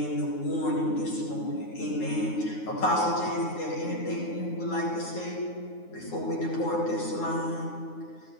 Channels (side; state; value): right; late; 9.6 ms